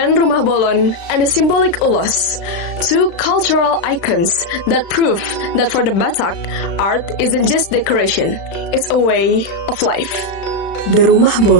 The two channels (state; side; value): late; right; 36 ms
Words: Rumah Bolon and the symbolic ulos, two cultural icons that prove that for the Batak, art isn't just decoration, it's a way of life. The Rumah